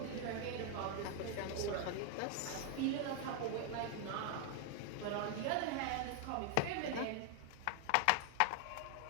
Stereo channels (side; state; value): both; different; correlation 0.00